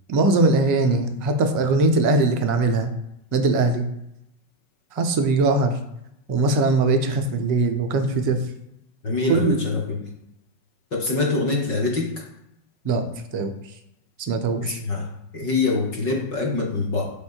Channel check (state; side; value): late; right; 5.4 ms